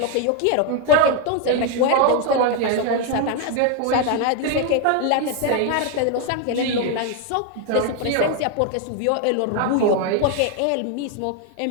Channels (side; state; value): both; different; correlation 0.01